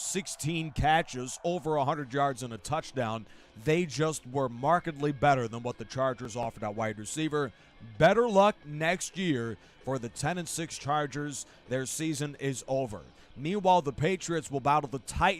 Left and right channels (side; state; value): both; identical; correlation 1.00